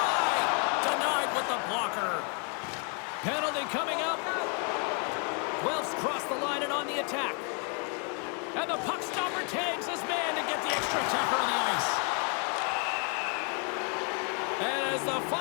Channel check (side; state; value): right; quieter; 38.3 dB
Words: Denied with the blocker. Penalty coming up. Guelph's crossed the line and on the attack. And the puck stopper tags his man to get the extra attacker on the ice. And as the